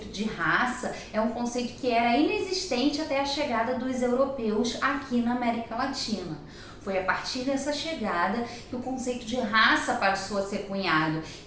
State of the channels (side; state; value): both; identical; correlation 1.00